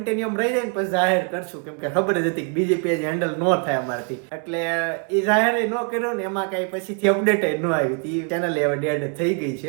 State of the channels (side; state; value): left; quieter; 38.8 dB